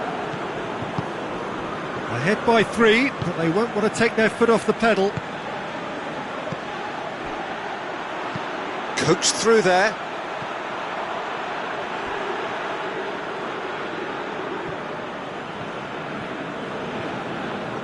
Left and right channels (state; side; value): identical; both; correlation 1.00